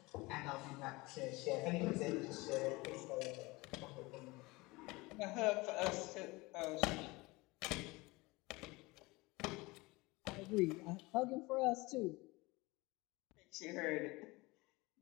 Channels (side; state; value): right; quieter; 23.0 dB